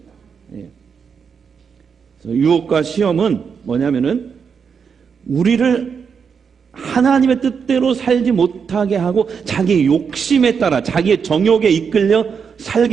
유혹과 시험은 뭐냐면은 우리를 하나님의 뜻대로 살지 못하게 하고 자기의 욕심에 따라 자기의 정욕에 이끌려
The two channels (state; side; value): quieter; left; 6.4 dB